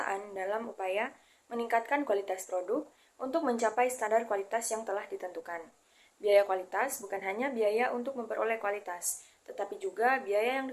dalam upaya meningkatkan kualitas produk untuk mencapai standar kualitas yang telah ditentukan. Biaya kualitas bukan hanya biaya untuk memperoleh kualitas, tetapi juga biaya yang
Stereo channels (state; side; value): identical; both; correlation 1.00